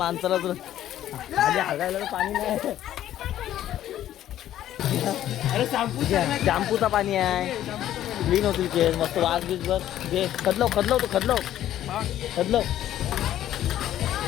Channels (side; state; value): right; quieter; 12.2 dB